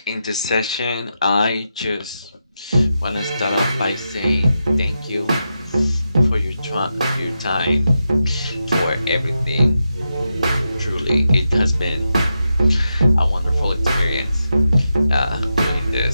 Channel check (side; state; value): both; inverted; correlation -0.87